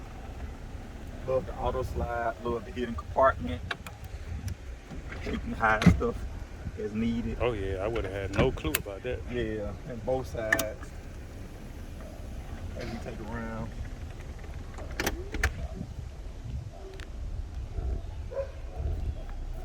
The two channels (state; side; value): identical; both; correlation 1.00